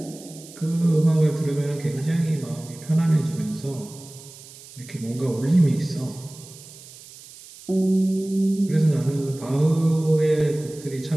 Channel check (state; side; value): noise; right; hiss, 19 dB below the sound